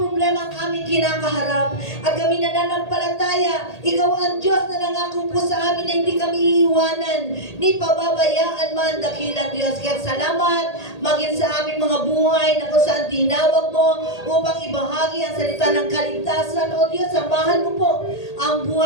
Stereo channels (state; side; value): late; right; 1.8 ms